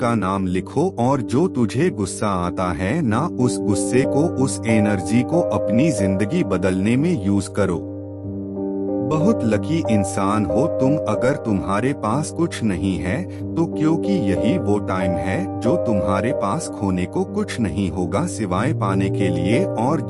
नाम लिखो और जो तुझे गुस्सा आता है ना, उस गुस्से को, उस एनर्जी को अपनी जिंदगी बदलने में यूज करो। बहुत लकी इंसान हो तुम अगर तुम्हारे पास कुछ नहीं है तो, क्योंकि यही वो टाइम है जो तुम्हारे पास खोने को कुछ नहीं होगा सिवाय पाने के लिए। और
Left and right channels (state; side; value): identical; both; correlation 1.00